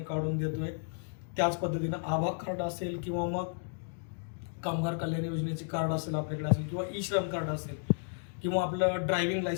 काढून देतोय, त्याच पद्धतीनं आभा कार्ड असेल किंवा मग कामगार कल्याण योजनेचे कार्ड असेल आपल्याकडे असेल किंवा ई श्रम कार्ड असेल किंवा आपलं ड्रायव्हिंग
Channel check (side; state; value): right; silent; digital silence